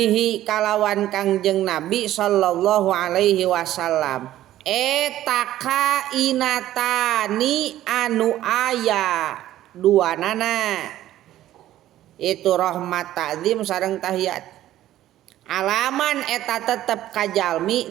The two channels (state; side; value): quieter; left; 13.5 dB